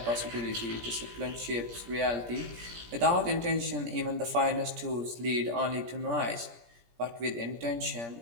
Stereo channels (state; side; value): late; left; 17 ms